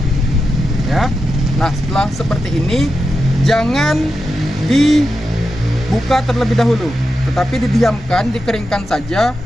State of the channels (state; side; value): normal; both; correlation 0.89